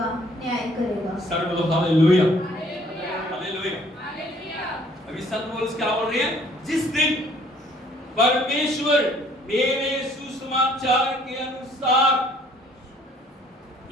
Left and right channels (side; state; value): both; normal; correlation 0.59